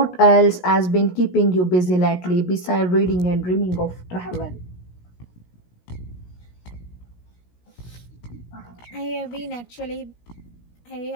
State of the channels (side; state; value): right; late; 17 ms